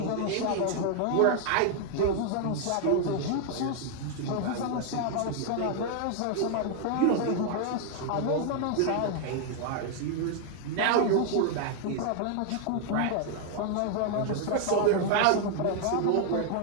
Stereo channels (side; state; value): both; different; correlation 0.00